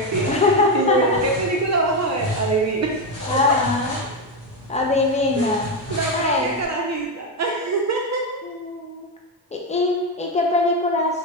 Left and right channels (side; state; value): both; normal; correlation 0.09